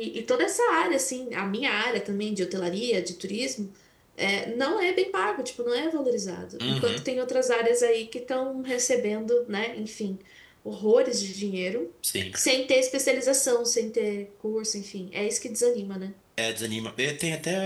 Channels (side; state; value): both; identical; correlation 1.00